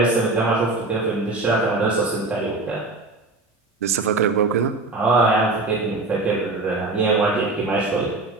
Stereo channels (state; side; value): quieter; left; 3.2 dB